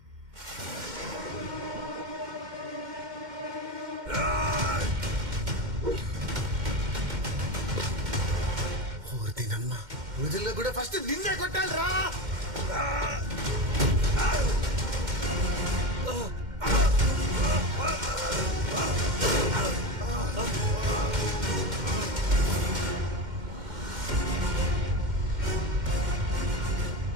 ఓర్దినమ్మా, రోజుల్లో కూడా ఫస్ట్ నిన్నే కొట్టాలి రా.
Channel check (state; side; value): late; left; 2.1 ms